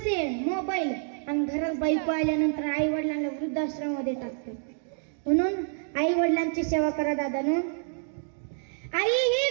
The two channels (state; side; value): silent; left; digital silence